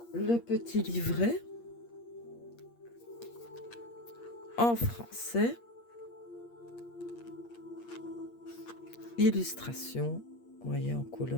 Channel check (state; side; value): late; right; 8.5 ms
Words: le petit livret en français. Illustration. Vous voyez, en